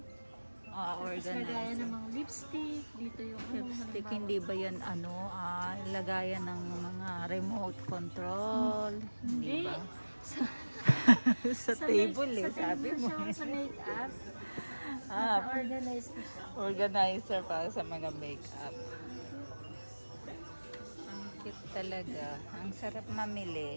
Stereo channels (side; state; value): both; inverted; correlation -1.00